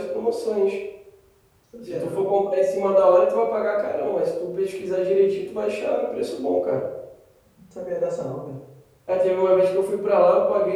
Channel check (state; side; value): identical; both; correlation 1.00